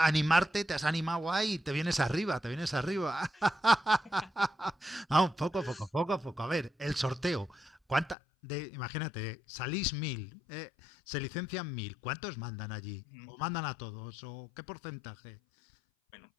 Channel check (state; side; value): drops out; right; at 8.2 s